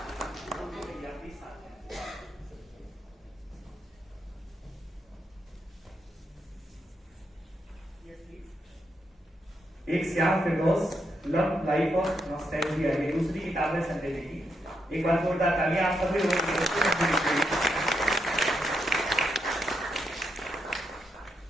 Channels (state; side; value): normal; both; correlation 0.80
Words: एक श्याम फिरदौस, लव लाइफ ऑफ नॉस्टैल्जिया, ये दूसरी किताब है संजय जी की। एक बार जोरदार तालियां आप सभी लोगों के लिए।